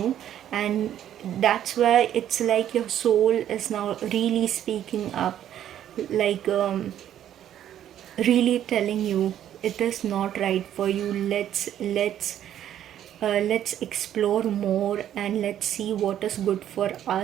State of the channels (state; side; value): quieter; left; 10.9 dB